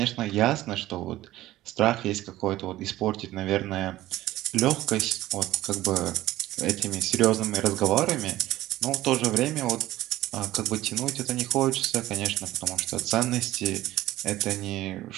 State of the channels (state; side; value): quieter; left; 15.7 dB